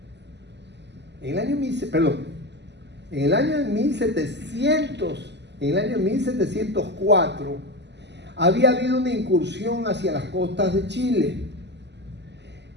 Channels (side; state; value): left; late; 0.50 ms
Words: en el año 1704, había habido una incursión hacia las costas de Chile,